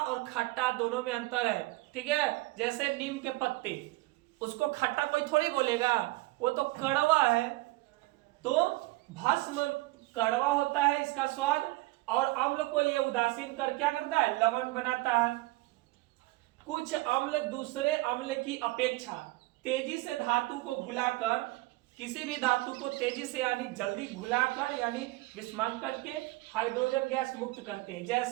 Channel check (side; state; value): left; quieter; 20.7 dB